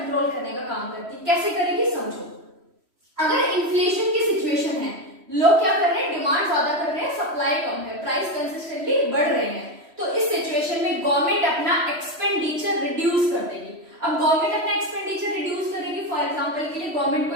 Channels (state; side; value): late; left; 3.1 ms